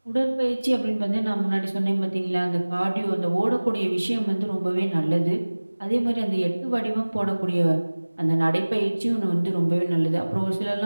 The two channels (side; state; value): both; inverted; correlation -1.00